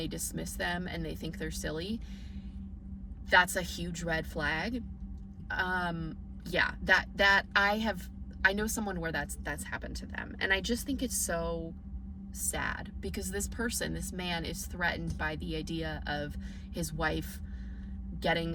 dismiss them and they think they're silly, that's a huge red flag. Yeah, that I know someone where that's happened to them, and I just think it's so sad because this man is threatened by the idea of his wife getting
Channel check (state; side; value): identical; both; correlation 1.00